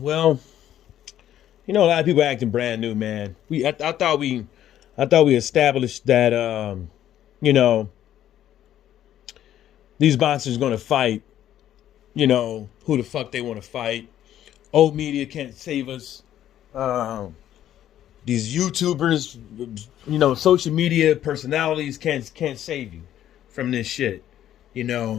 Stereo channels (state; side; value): quieter; right; 11.6 dB